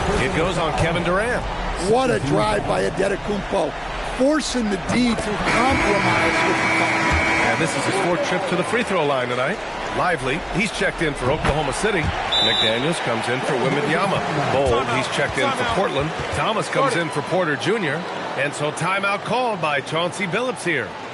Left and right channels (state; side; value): identical; both; correlation 1.00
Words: It goes on Kevin Durant. What a drive by Adetokounmpo, forcing the D to compromise with the foul. And this is his 4th trip to the free throw line tonight. Lively, he's checked in for Oklahoma City. McDaniels comes in for Wembanyama. Bold, he's checked in for Portland. Thomas comes in for Porter Jr. And so timeout called by Chauncey Billups here.